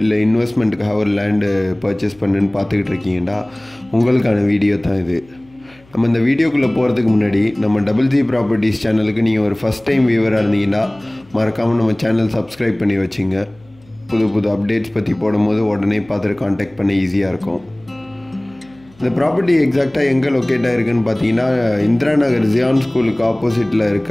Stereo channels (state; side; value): noise; left; hum, 28 dB below the sound